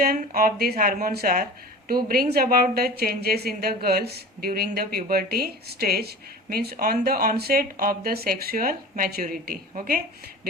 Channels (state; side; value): normal; both; correlation 0.37